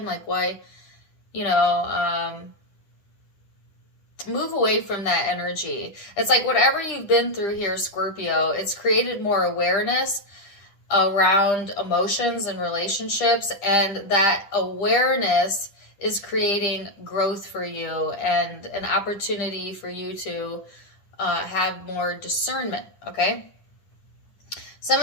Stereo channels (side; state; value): right; late; 10 ms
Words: Like, why, you know, move away from that energy. It's like whatever you've been through here, Scorpio, it's created more awareness around emotions and relationships, and that awareness is creating growth for you and an opportunity for you to have more discernment, okay? Some